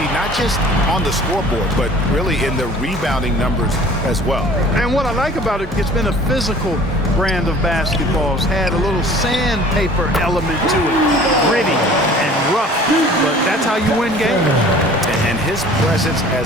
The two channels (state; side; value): normal; both; correlation 0.48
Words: not just on the scoreboard, but really in the rebounding numbers as well. And what I like about it, it's been a physical brand of basketball. It's had a little sandpaper element to it. Gritty and rough, but that's how you win games. And his presence